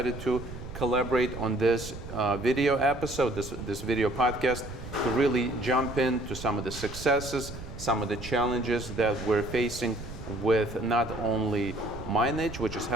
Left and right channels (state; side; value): noise; right; rumble, 12 dB below the sound